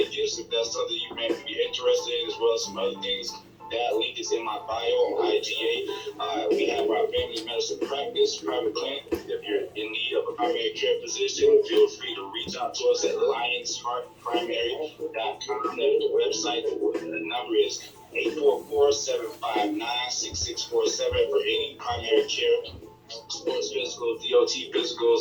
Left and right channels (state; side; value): identical; both; correlation 1.00